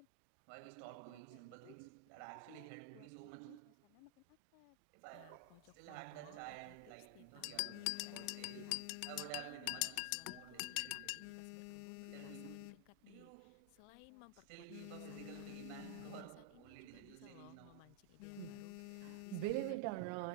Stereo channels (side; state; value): both; different; correlation 0.00